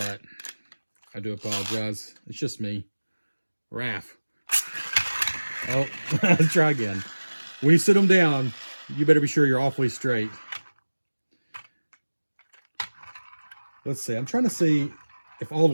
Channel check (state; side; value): inverted; both; correlation -1.00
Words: I do apologize. It's just me. Raph. Oh, let's try again. When you sit them down, you better be sure you're awfully straight. Let's see. I'm trying to see if all the